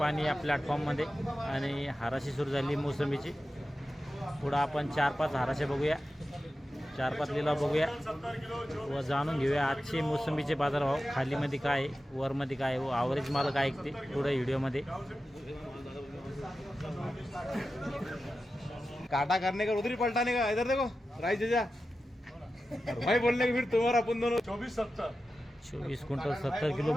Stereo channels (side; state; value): both; normal; correlation 0.93